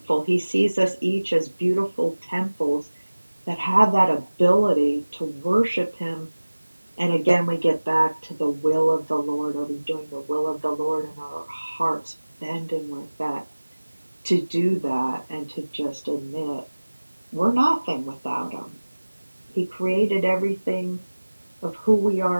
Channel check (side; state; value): both; inverted; correlation -1.00